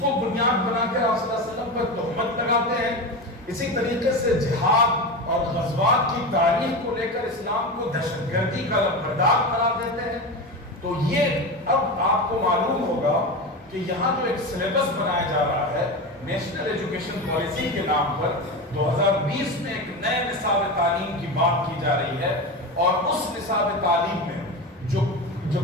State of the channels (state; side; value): normal; both; correlation 0.22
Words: کو بنیاد بنا کر آپ صلی اللہ علیہ وسلم پر تہمت لگاتے ہیں۔ اسی طریقے سے جہاد اور غزوات کی تاریخ کو لے کر اسلام کو دہشت گردی کا لمبردار قرار دیتے ہیں۔ تو یہ اب آپ کو معلوم ہوگا کہ یہاں جو ایک سلیبس بنایا جا رہا ہے نیشنل ایجوکیشن پالیسی کے نام پر، 2020 میں ایک نئے نصاب تعلیم کی بات کی جا رہی ہے، اور اس نصاب تعلیم میں جو